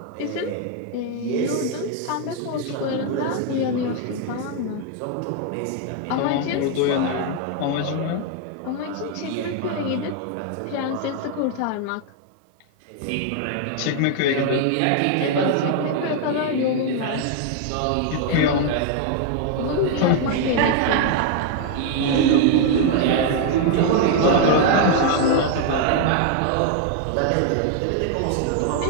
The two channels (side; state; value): both; different; correlation 0.00